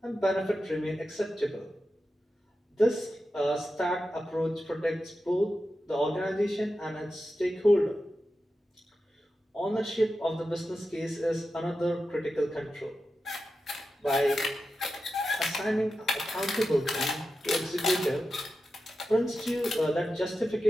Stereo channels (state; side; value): normal; both; correlation 0.91